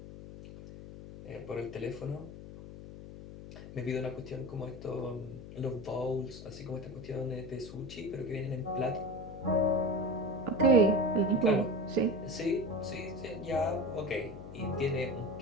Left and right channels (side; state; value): left; noise; hum, 13 dB below the sound